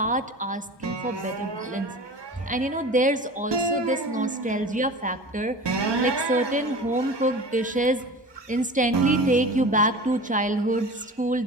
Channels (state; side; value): normal; both; correlation 0.36